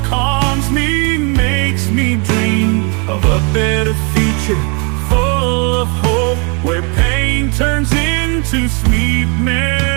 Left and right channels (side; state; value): left; quieter; 34.0 dB